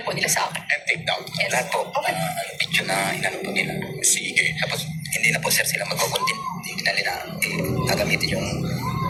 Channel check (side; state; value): both; identical; correlation 1.00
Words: po nila sa akin. And take down. Yes. Lahat po, picture na inano po nila. Sige. Tapos, hindi na po sir sila magko-content. Hindi na gagamitin yung